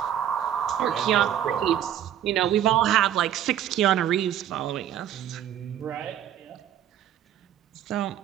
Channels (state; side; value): quieter; left; 10.6 dB